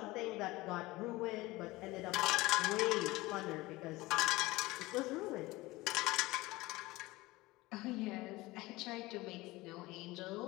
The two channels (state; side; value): quieter; right; 20.1 dB